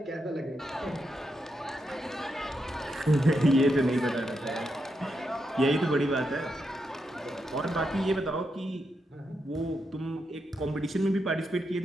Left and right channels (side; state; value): both; normal; correlation 0.83